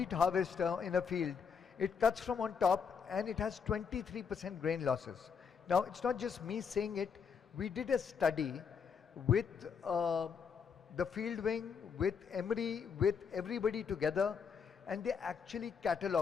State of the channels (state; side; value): quieter; right; 6.3 dB